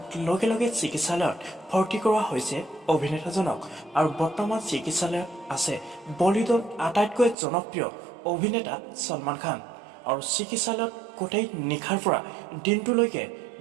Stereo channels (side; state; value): left; drops out; at 7.4 s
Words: লগে লগে চিকিৎসালয়ত ভৰ্তি কৰোৱা হৈছে অভিনেতাজনক আৰু বৰ্তমান চিকিৎসালয়ত আছে বলিউডৰ আটাইতকৈ জনপ্ৰিয় অভিনেতা সলমান খান। আৰু চিকিৎসালয়ত গোটেই নিশাৰ পৰা দিনটোলৈকে